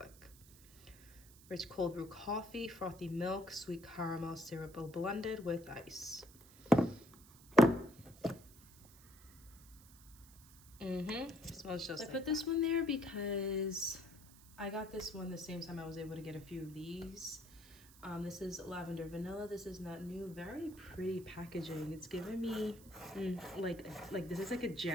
Rich cold brew coffee, frothy milk, sweet caramel syrup blended with ice. Smells just like. I put this one there because I got this one the same time I was able to get a few of these. This is lavender vanilla. This is not new. Very pretty packaging. It's giving me like this is like a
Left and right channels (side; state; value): right; noise; hiss, 22 dB below the sound